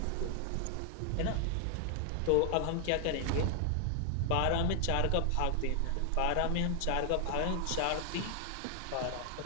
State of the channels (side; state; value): both; different; correlation 0.00